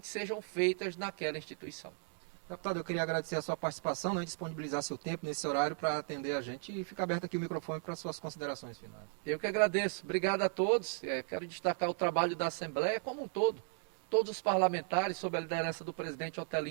sejam feitos naquela instituição. Deputado, eu queria agradecer a sua participação, né, disponibilizar seu tempo nesse horário para atender a gente, e fica aberto aqui o microfone para suas considerações finais. Eu que agradeço. Obrigado a todos. Quero destacar o trabalho da Assembleia como um todo. Todos os parlamentares, sob a liderança do presidente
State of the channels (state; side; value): silent; left; 54 dB below the other